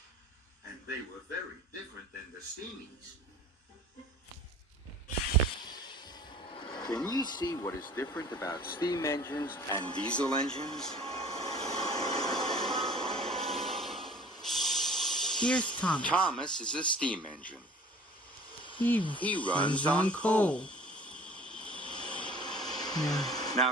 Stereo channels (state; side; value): normal; both; correlation 0.47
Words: and they were very different than the steamies. Can you see what is different about steam engines and diesel engines? Here's Thomas. Thomas is a steam engine. He runs on coal.